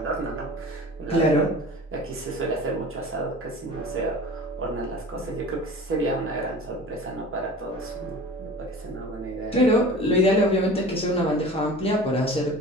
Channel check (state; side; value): normal; both; correlation 0.39